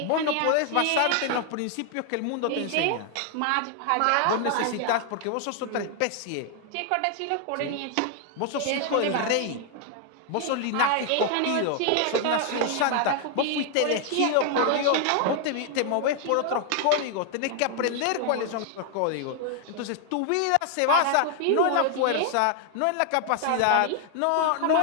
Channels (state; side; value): different; both; correlation 0.00